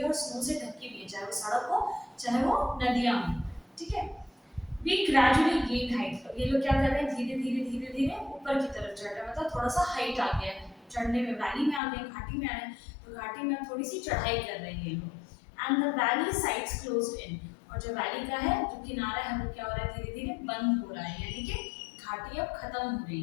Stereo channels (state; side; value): drops out; right; at 11.8 s